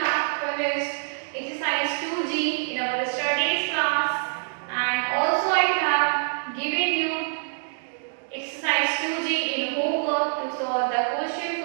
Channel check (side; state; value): left; silent; digital silence